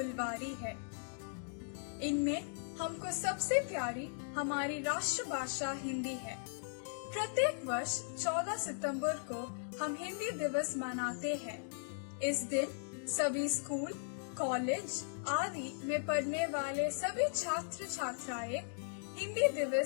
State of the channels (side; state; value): right; silent; digital silence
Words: है। इनमें हमको सबसे प्यारी हमारी राष्ट्रभाषा हिंदी है। प्रत्येक वर्ष 14 सितंबर को हम हिंदी दिवस मनाते हैं। इस दिन सभी स्कूल, कॉलेज आदि में पढ़ने वाले सभी छात्र छात्राएं हिंदी